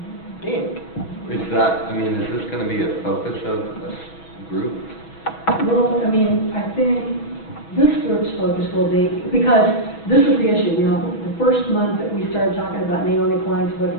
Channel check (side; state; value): right; late; 6.2 ms